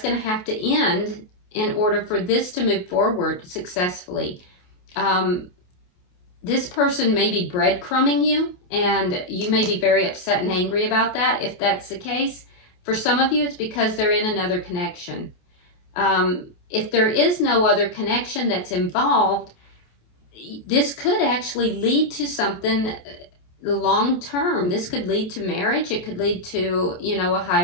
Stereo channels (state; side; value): late; right; 28 ms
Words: going to have to end in order for this to move forward successfully. This person may be breadcrumbing you, and you may be very upset and angry about that if that's the case. For some of you, it's because they're in another connection. If there is no other connection that's involved, this could actually lead to something long term. This could lead to marriage. It could lead to, you know, a